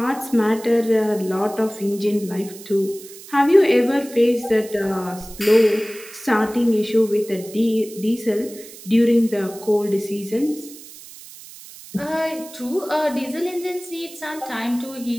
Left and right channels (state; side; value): noise; right; hiss, 17 dB below the sound